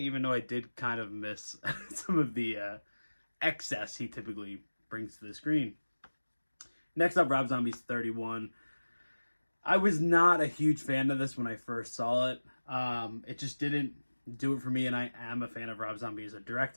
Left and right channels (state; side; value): inverted; both; correlation -1.00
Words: though I did kind of miss some of the excess he typically brings to the screen. Next up, Rob Zombie's 31. I was not a huge fan of this when I first saw it. It just didn't do it for me, and I am a fan of Rob Zombie as a